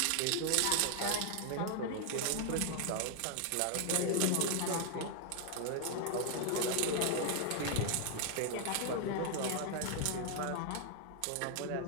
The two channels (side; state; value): both; different; correlation 0.00